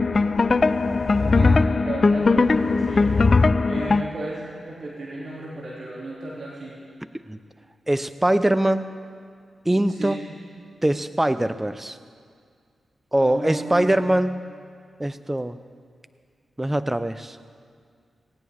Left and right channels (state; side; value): normal; both; correlation 0.95